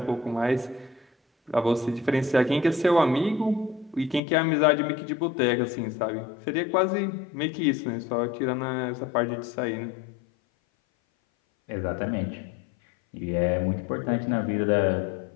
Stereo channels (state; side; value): drops out; right; at 4.2 s